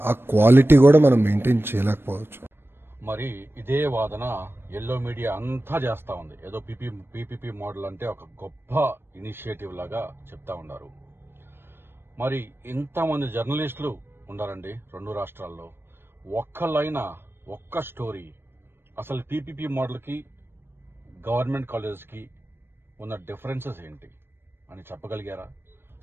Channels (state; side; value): late; left; 0.11 ms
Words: ఆ క్వాలిటీ కూడా మనం మెయింటైన్ చేయలేకపోవచ్చు. మరి ఇదే వాదన ఎల్లో మీడియా అంతా చేస్తా ఉంది. ఏదో పీపీపీ మోడల్ అంటే ఒక గొప్ప ఇనిషియేటివ్ లాగా చెప్తా ఉన్నారు. మరి ఇంతమంది జర్నలిస్టులు ఉండారండి 2 రాష్ట్రాల్లో. ఒక్క స్టోరీ అసలు పీపీపీ మోడల్కి గవర్నమెంట్ కాలేజెస్కి ఉన్న డిఫరెన్సెస్ ఏంటి అని చెప్పగలిగారా?